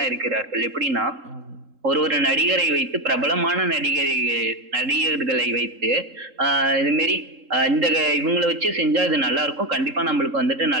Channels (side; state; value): left; late; 3.7 ms